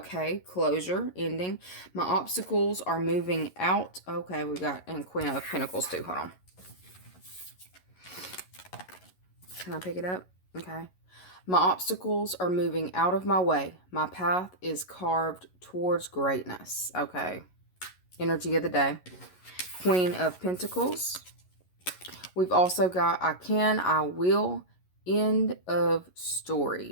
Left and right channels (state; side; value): late; right; 11 ms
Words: closure, ending. My obstacles are moving out. Okay, we got, and Queen of Pentacles too. Hold on. Can I pick it up? Okay. My obstacles are moving out of my way. My path is carved towards greatness. Okay. Energy of the day. Queen of Pentacles. We've also got I can, I will, end of